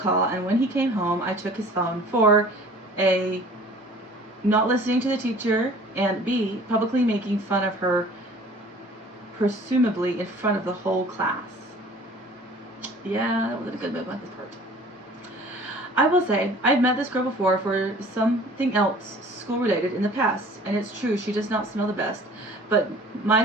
call, and when he came home, I took his phone for A, not listening to the teacher, and B, publicly making fun of her, presumably in front of the whole class. Yeah, that wasn't a good move on his part. I will say, I've met this girl before for something else school-related in the past, and it's true, she does not smell the best, but my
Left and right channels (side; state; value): both; normal; correlation 0.48